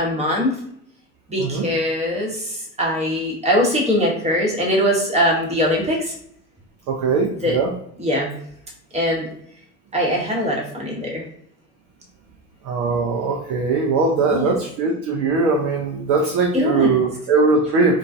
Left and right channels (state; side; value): normal; both; correlation 0.19